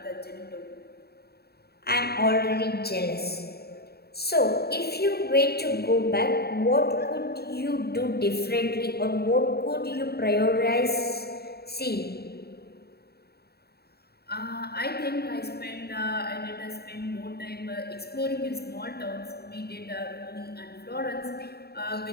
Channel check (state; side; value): late; right; 0.46 ms